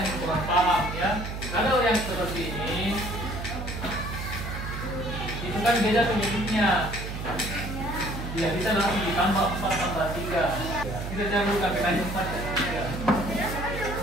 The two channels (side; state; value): right; noise; hum, 6 dB below the sound